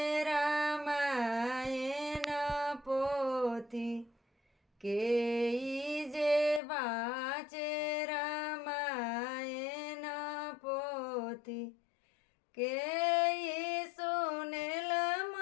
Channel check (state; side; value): drops out; right; at 6.6 s